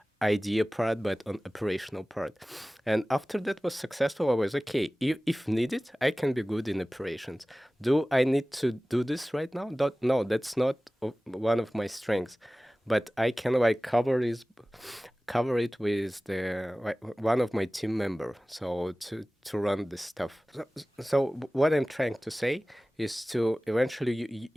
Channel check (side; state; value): both; normal; correlation 0.98